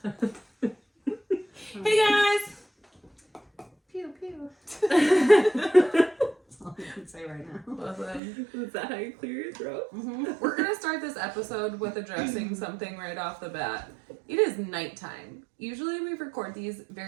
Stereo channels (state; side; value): drops out; left; at 8.2 s